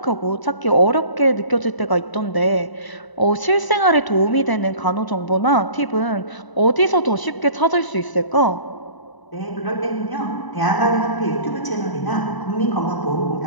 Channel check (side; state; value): right; late; 1.0 ms